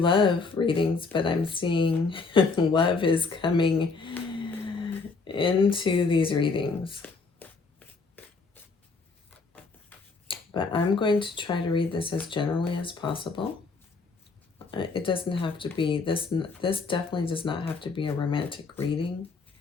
readings, but I'm seeing love is coming into these readings. But I'm going to try to read this as generally as possible. It doesn't have to be, this definitely does not have to be a romantic reading.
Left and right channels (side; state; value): right; quieter; 4.3 dB